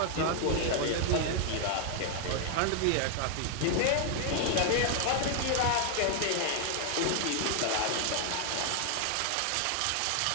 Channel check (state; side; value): different; both; correlation 0.00